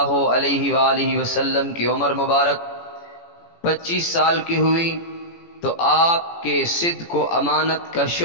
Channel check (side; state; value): right; late; 18 ms